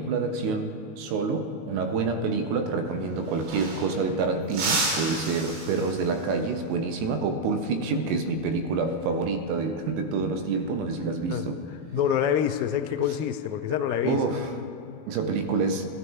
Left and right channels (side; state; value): left; late; 19 ms